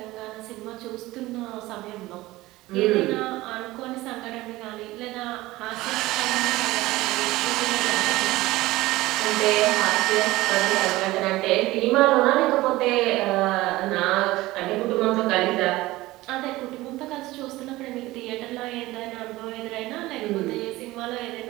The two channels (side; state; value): left; quieter; 18.5 dB